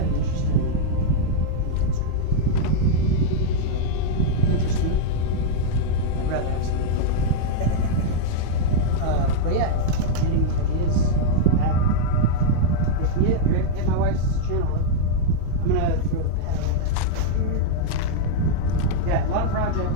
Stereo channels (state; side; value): different; both; correlation -0.02